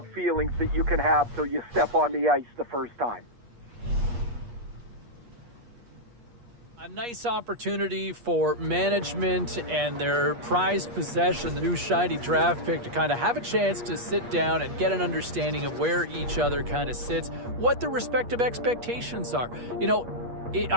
feelings that you can have till you step on the ice the first time. A nice opportunity for management and their prized possession, the new shiny draft pick, to kind of have a chance to sit down and get an understanding of where each other kind of sits, what their respective expectations are.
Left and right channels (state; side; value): late; left; 8.4 ms